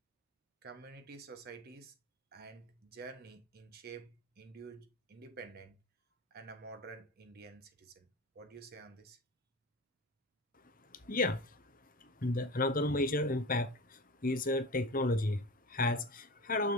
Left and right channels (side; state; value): both; normal; correlation 0.31